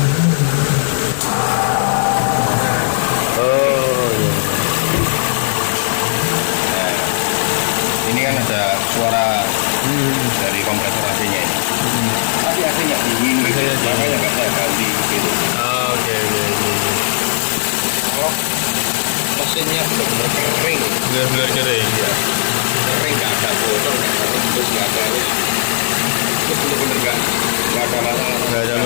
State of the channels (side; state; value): right; silent; 61 dB below the other